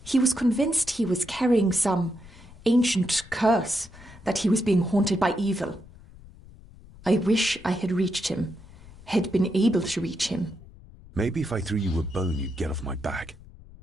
He was convinced he was carrying some ancient curse, that he was being haunted by evil. I wish I had reached him, had been able to reach him. Maybe if I threw you a bone, you'd get off my back.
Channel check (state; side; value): noise; left; rumble, 21 dB below the sound